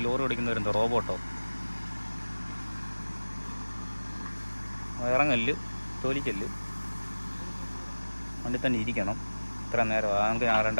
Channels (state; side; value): inverted; both; correlation -1.00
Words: ലോറി ഓടിക്കുന്നവരെന്തോ റോബോട്ടോ? ഇറങ്ങല്ല്, തോലിക്കല്ല്, വണ്ടി തന്നെ ഇരിക്കണം, ഇത്ര നേരം അങ്ങനെ